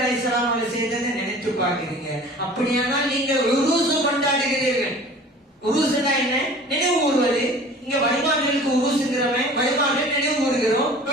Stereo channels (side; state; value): both; normal; correlation 0.44